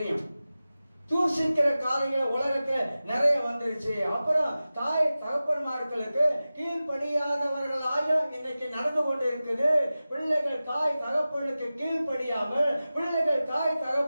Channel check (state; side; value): inverted; both; correlation -0.95